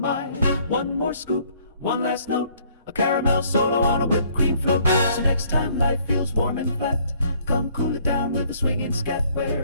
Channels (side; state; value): both; inverted; correlation -0.62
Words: One more scoop, one last note, a caramel solo on a whipped cream float. So next time life feels warm and flat, come cool it down with a swinging scat,